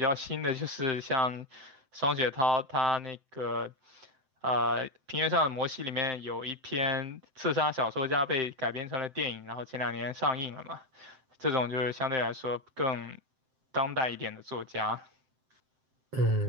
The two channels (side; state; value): left; late; 7.7 ms